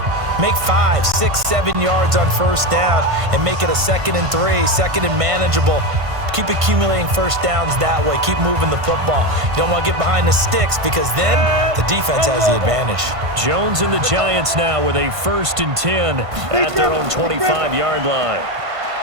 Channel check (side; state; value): left; late; 1.5 ms